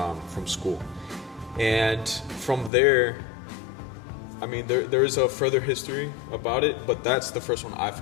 from school. And from there, I mean, there is a further history about it, but that's the first one I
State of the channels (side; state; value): right; drops out; at 2.7 s